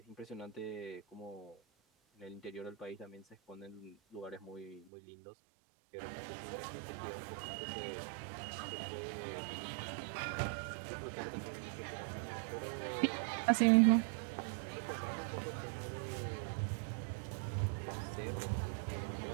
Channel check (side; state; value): left; drops out; at 4.9 s